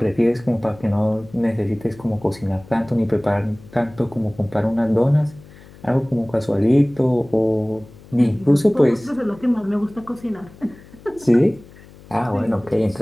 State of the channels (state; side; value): noise; left; hum, 22 dB below the sound